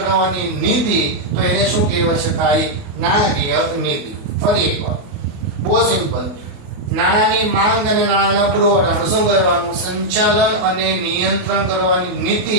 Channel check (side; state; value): left; late; 28 ms